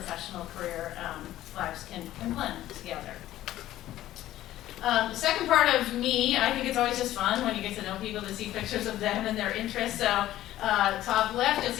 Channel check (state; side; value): quieter; right; 14.0 dB